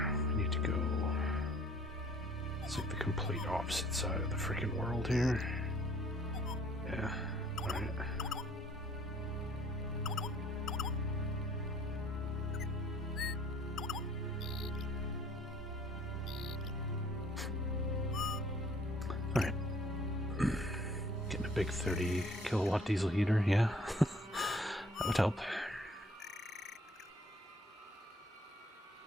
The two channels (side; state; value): both; normal; correlation 0.58